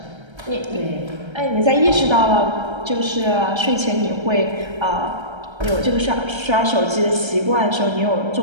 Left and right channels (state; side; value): late; left; 1.3 ms